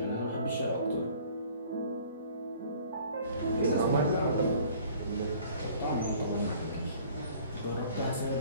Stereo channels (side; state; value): both; inverted; correlation -0.52